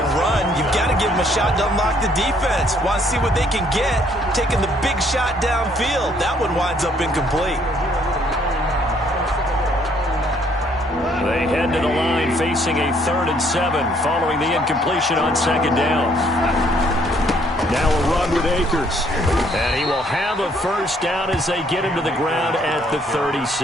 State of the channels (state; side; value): normal; both; correlation 0.65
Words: run, you've got to give him a shot to unlock the defense. Want to see what they can get, taking the big shot downfield. That one winds up incomplete. They head to the line facing a 3rd and 7 following the incompletion on 2nd down. Now a run with Akers. And he will have a first down as they get him to the ground at the